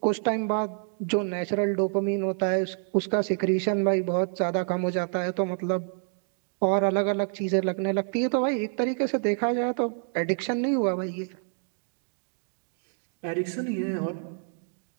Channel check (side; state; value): left; silent; 60 dB below the other